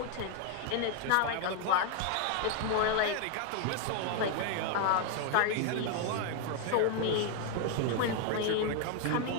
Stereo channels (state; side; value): different; both; correlation 0.01